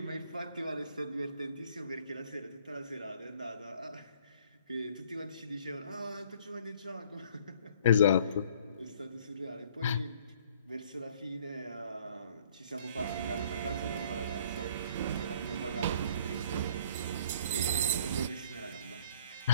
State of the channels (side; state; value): both; inverted; correlation -0.57